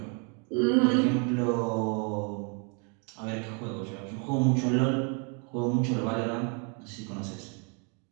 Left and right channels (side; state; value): left; quieter; 36.5 dB